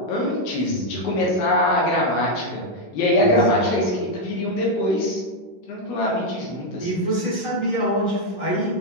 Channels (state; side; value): late; right; 11 ms